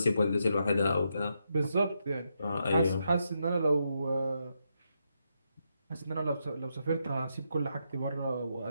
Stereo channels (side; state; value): both; inverted; correlation -0.82